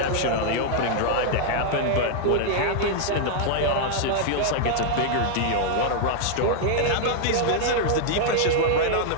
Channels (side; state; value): both; different; correlation -0.01